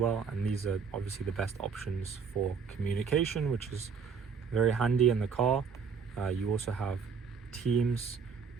and these are obviously the best options for communication, which is very handy in the car. You also have Teams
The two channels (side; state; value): left; quieter; 6.0 dB